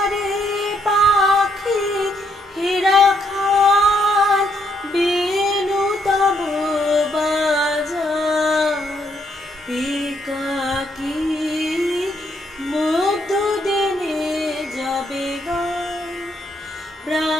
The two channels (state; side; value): normal; both; correlation 0.74